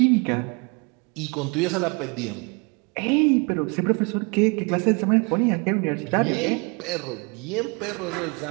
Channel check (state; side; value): quieter; left; 31.3 dB